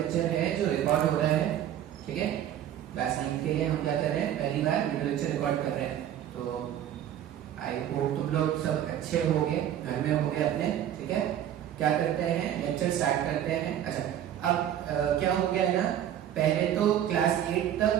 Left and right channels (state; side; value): quieter; left; 10.9 dB